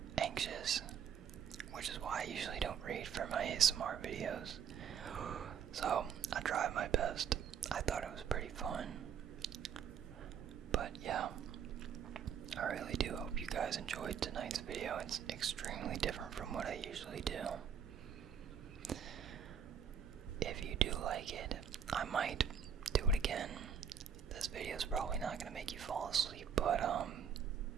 anxious, which is why I usually don't read for my ASMR videos. So, I tried my best. I thought it was pretty fun. But yeah, I really do hope you guys enjoyed tonight's video. It's extremely different from what I usually do. If you do like it, I might do it again. This video is probably not going to make you fall asleep, but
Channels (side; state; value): left; quieter; 7.6 dB